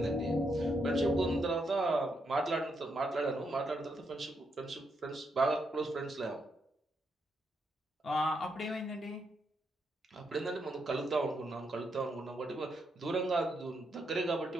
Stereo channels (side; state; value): both; normal; correlation 0.80